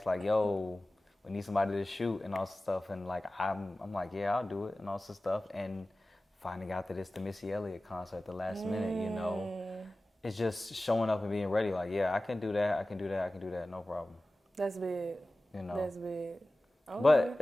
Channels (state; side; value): normal; both; correlation 0.96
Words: like, yo, we need somebody to shoot and all this stuff, and like I'm like, yeah, I'll do it and all this stuff, and finding out that it's the Missy Elliott concert at the last minute, you know, it's just showing up and being ready. Like, yeah, I can do that, no problem. That's big. You know. That's big. Okay. But